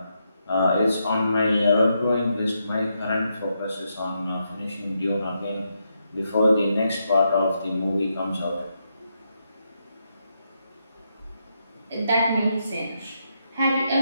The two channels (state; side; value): inverted; both; correlation -0.81